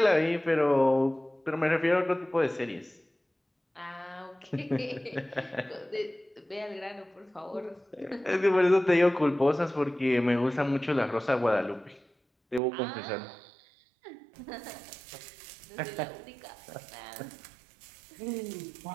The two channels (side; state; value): left; drops out; at 12.6 s